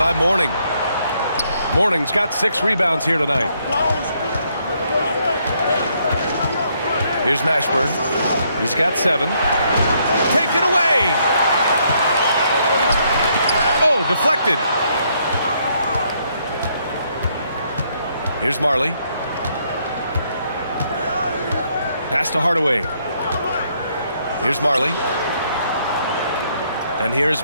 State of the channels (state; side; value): inverted; both; correlation -0.72